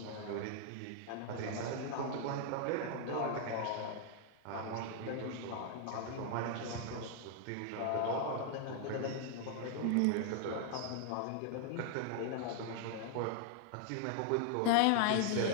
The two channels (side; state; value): both; different; correlation 0.00